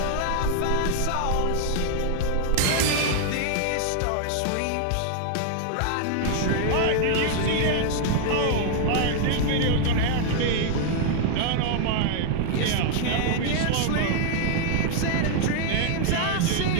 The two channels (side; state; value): both; different; correlation 0.00